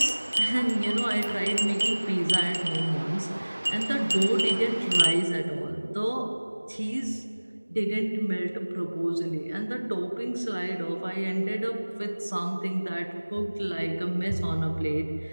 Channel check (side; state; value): both; inverted; correlation -1.00